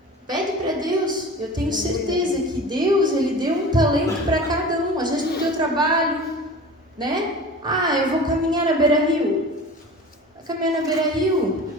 Pede para Deus. Eu tenho certeza que Deus, Ele deu um talento para cada um. Às vezes no teu trabalho, né? Eu vou caminhar na beira-rio. Vai caminhar na beira-rio.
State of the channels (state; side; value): normal; both; correlation 0.37